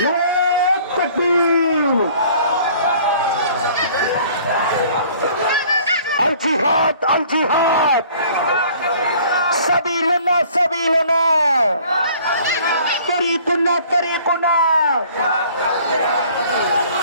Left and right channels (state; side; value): inverted; both; correlation -0.53